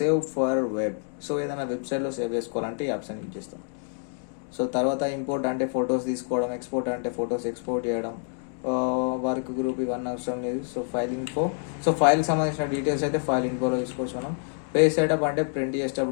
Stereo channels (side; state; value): right; silent; 60 dB below the other